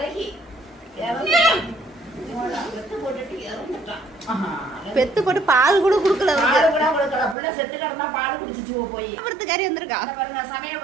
பெத்து போட்டு பால் கூட குடுக்கல, புள்ள செத்து கிடந்தா பால் குடிச்சிச்சு போய். பருத்துக்காரி வந்திருக்கா பாருங்க,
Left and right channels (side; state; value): left; drops out; at 7.4 s